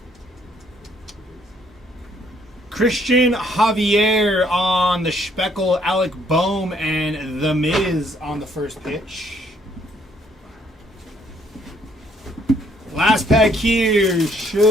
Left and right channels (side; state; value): both; normal; correlation 0.67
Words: Christian Javier on the Speckle, Alec Boehm, and The Miz on the first pitch. Last pack here